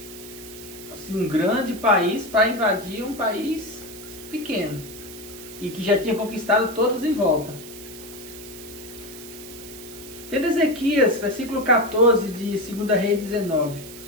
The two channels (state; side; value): noise; right; hiss, 15 dB below the sound